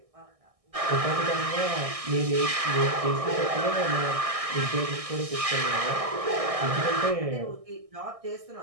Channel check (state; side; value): late; left; 1.6 ms